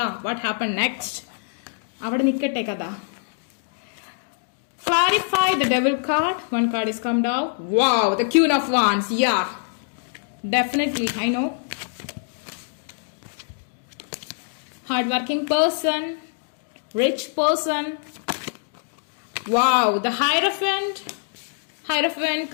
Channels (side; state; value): right; silent; digital silence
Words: what happened next? അവിടെ നിൽക്കട്ടെ കഥ. Clarify the devil card. One card is come down. Wow, the Queen of Wands. Yeah, definitely. I know. Hardworking person, rich person. Wow, the Hierophant